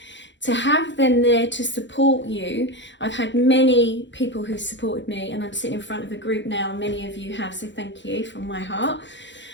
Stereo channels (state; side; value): late; right; 0.53 ms